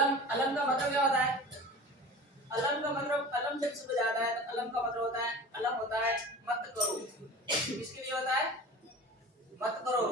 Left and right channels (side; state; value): both; normal; correlation 0.37